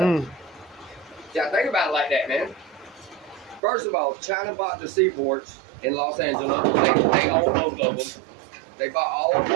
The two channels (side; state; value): left; drops out; at 3.6 s